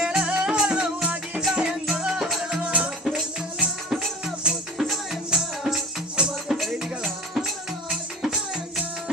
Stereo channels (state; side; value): normal; both; correlation 0.38